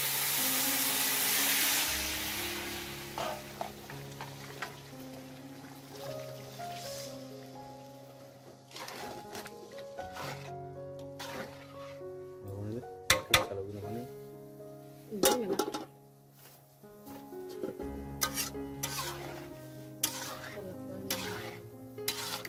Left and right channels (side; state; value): both; identical; correlation 1.00